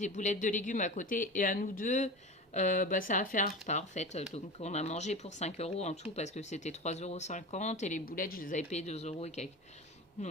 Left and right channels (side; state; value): both; normal; correlation 0.30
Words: boulettes de légumes à côté. Et à nous deux, bah, ça a fait un repas en fait. Donc on a mangé pour 5 € en tout parce que c'était 3,50 € et les boulettes, je les avais payées 2 € et quelques.